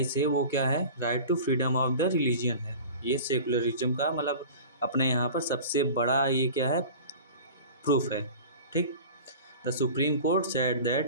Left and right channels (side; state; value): both; inverted; correlation -0.38